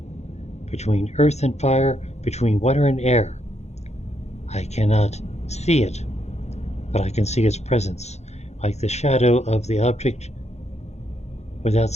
between earth and fire, between water and air. I cannot see it, but I can see its presence, like the shadow of the object without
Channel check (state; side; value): late; right; 0.32 ms